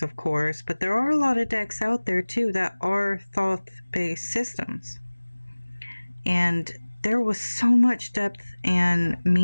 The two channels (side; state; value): both; inverted; correlation -1.00